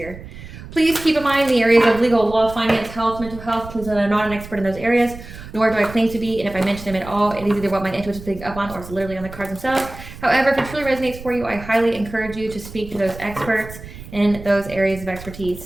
Please keep in mind the areas of legal, law, finance, health, mental health. Please know that I'm not an expert in those areas, nor do I claim to be. And if I mention them at all, it is either what my intuition is picking up on or it's literally on the cards themselves. However, if it truly resonates for you, I highly encourage you to speak to those experts in those areas of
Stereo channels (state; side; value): noise; right; rumble, 14 dB below the sound